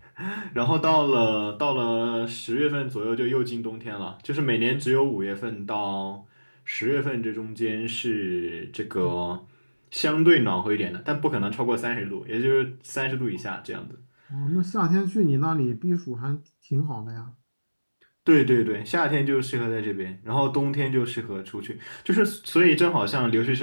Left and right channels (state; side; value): inverted; both; correlation -1.00